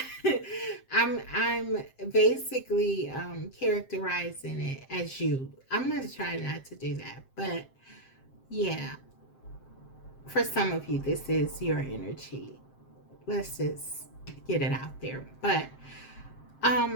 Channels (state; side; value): late; right; 7.6 ms